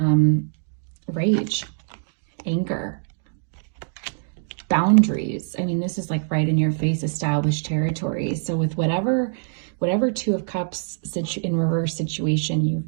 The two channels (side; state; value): left; silent; digital silence